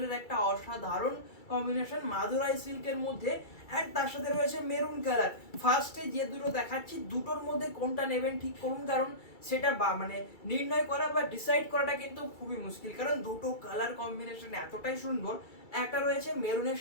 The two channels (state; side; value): late; right; 2.3 ms